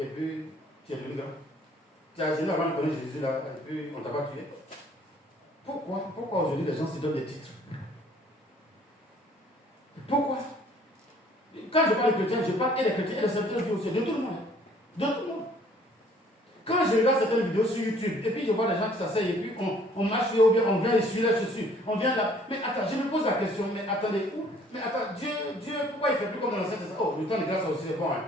puis tu es devenu grand. Tu as gêné avant de connaître Jésus là, et puis on t'a pas tué. Pourquoi aujourd'hui les gens se donnent des titres? Pourquoi? Quand je parle de chrétiens, je parle et des chrétiens et des serviteurs du aussi, de tout le monde. De tout le monde. Quand je regarde certaines vidéos sur YouTube, et puis je vois des gens qui s'asseyent, et puis on marche ou bien on vient essuyer les chaussures, on vient là. Mais attends, je me pose la question, mais attendez, où? Mais attends, Dieu, pourquoi il ne fait plus comme dans l'Ancien Testament? Oh, le temps de grâce aussi c'est bon. Hein.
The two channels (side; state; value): both; normal; correlation 0.58